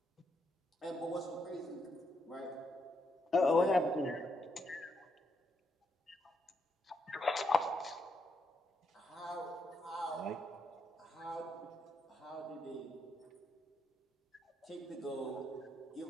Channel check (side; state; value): both; normal; correlation 0.78